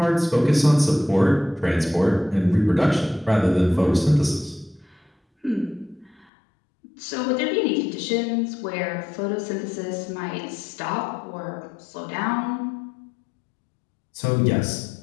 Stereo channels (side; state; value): right; drops out; at 6.2 s